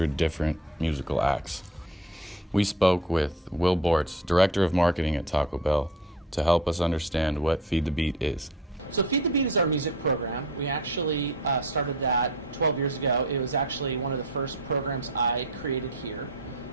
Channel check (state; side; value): normal; both; correlation 0.39